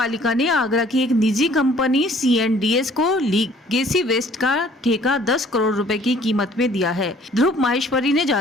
ने आगरा की एक निजी कंपनी C&DS को लीगेसी वेस्ट का ठेका 10 करोड़ रुपए की कीमत में दिया है। ध्रुव माहेश्वरी ने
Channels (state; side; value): normal; both; correlation 0.56